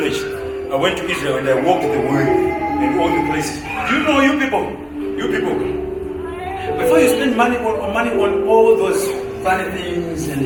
I went to Israel and I walked the way in all the places. Do you know, you people, before you spend money on all those funny things and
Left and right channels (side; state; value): both; identical; correlation 1.00